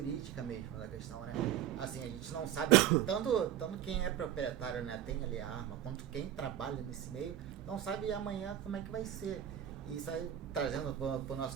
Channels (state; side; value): quieter; left; 10.9 dB